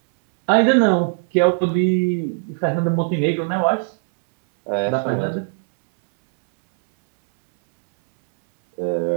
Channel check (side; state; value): left; silent; 66 dB below the other